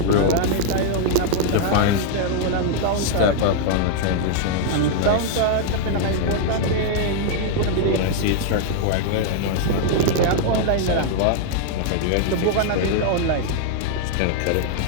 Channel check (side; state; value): both; different; correlation 0.00